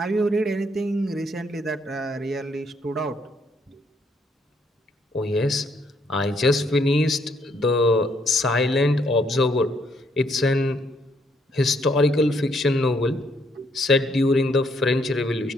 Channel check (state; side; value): normal; both; correlation 0.71